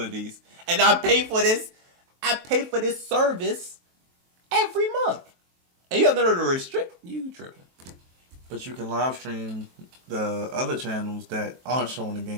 And I pay for this service every month. And you have no to restrict... You tripping. But you can live stream the other channels that aren't showing the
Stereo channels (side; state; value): left; late; 23 ms